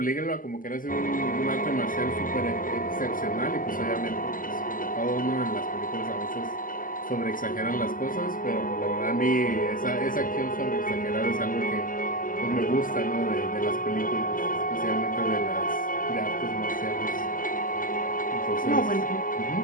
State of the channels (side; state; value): right; late; 0.40 ms